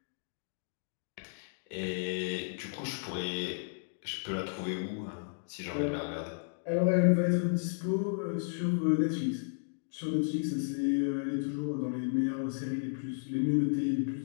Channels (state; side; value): silent; right; digital silence